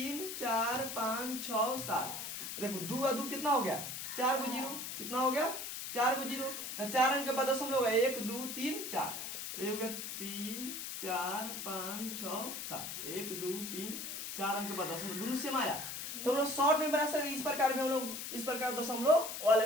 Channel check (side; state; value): left; noise; hiss, 6 dB below the sound